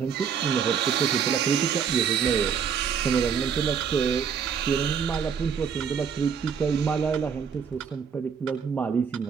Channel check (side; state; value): left; quieter; 7.0 dB